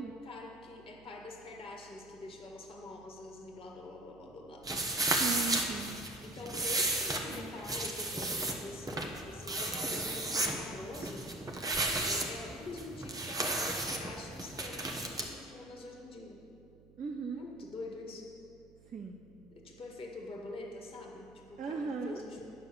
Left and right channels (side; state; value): right; noise; hum, 23 dB below the sound